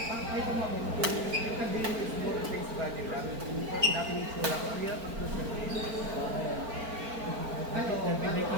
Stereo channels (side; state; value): left; late; 4.4 ms